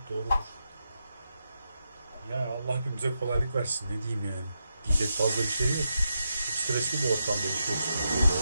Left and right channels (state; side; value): inverted; both; correlation -0.85